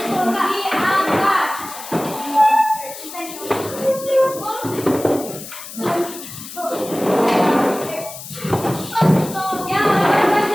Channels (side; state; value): left; noise; hiss, 12 dB below the sound